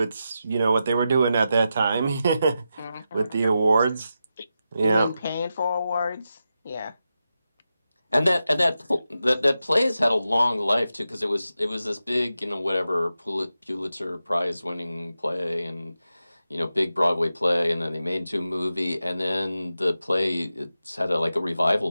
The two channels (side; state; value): both; inverted; correlation -0.90